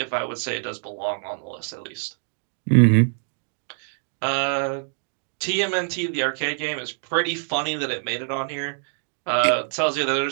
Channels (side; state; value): left; silent; 62 dB below the other